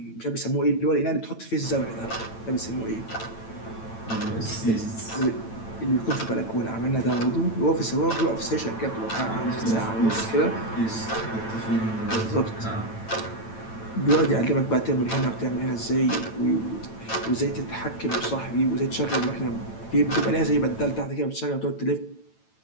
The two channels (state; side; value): late; right; 9.0 ms